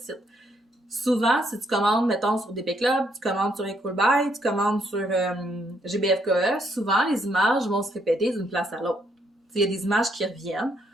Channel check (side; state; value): both; normal; correlation 0.72